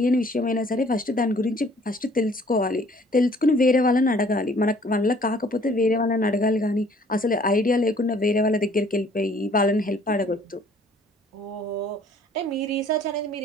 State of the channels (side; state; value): both; normal; correlation 0.57